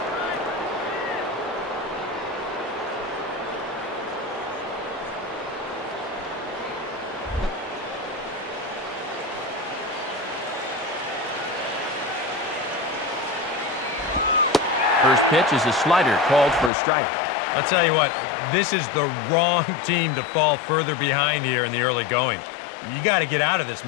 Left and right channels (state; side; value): drops out; right; at 16.7 s